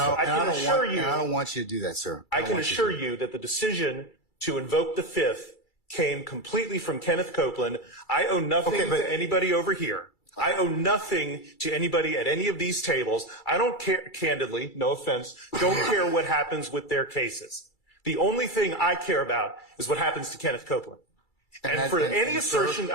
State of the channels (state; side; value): late; right; 2.3 ms